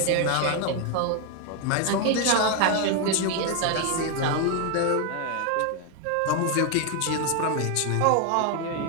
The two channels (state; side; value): different; both; correlation 0.01